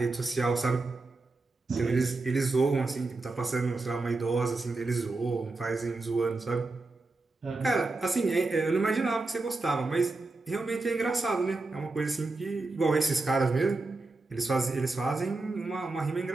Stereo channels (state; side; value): quieter; left; 3.4 dB